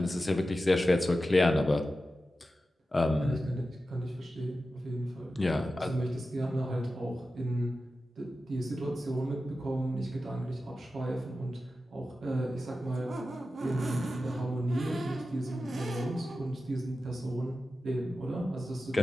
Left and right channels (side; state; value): both; normal; correlation 0.93